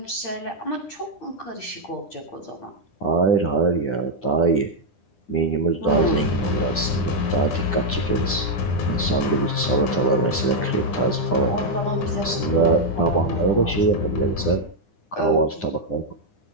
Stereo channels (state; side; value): late; right; 9.9 ms